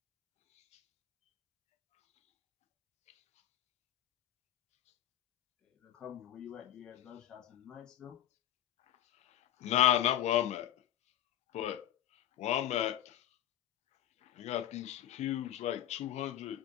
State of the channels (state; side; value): quieter; right; 12.0 dB